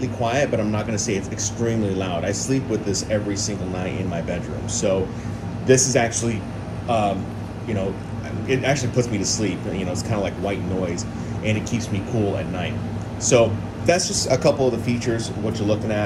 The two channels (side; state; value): both; identical; correlation 1.00